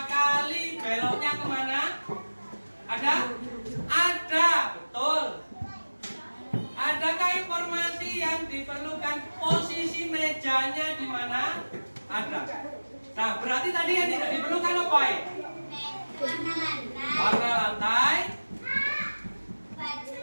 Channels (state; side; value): inverted; both; correlation -1.00